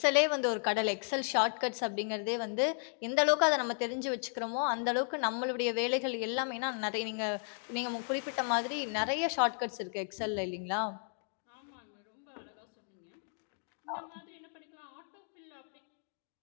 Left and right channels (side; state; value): right; silent; 55 dB below the other